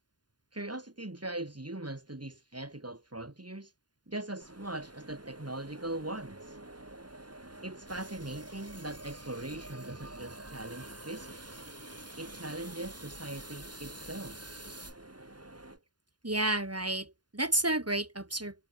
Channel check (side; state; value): left; late; 0.70 ms